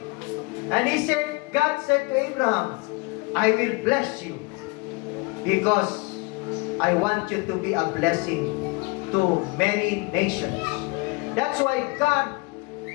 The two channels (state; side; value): quieter; right; 26.5 dB